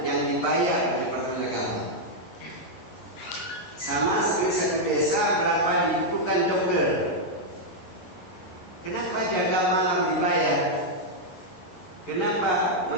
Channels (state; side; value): late; right; 11 ms